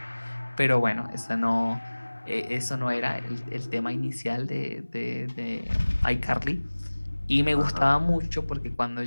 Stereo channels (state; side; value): inverted; both; correlation -1.00